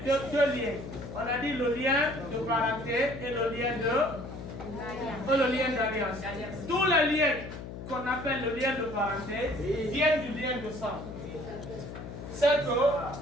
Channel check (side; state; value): left; noise; hum, 10 dB below the sound